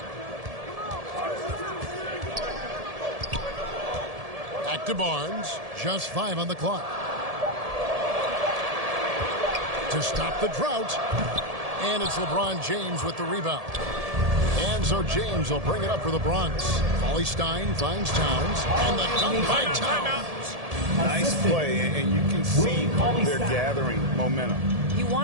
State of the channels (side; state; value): left; late; 1.7 ms